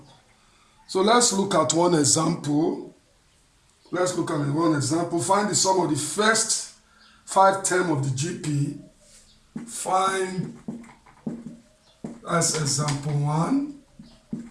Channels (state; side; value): identical; both; correlation 1.00